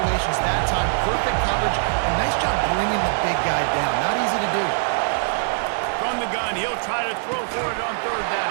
That time, perfect coverage, and nice job bringing the big guy down. Not easy to do. From the gun, he'll try to throw for it on third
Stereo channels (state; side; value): silent; left; digital silence